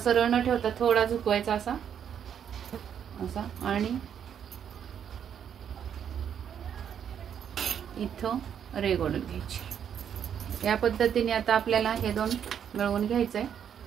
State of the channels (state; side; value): quieter; left; 8.6 dB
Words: न ठेवता थोडा झुकवायचा असा असा, आणि इथं रेघ ओढून घ्यायची। या पद्धतीने आता आपल्याला हे दोन मिळवून घ्यायचंय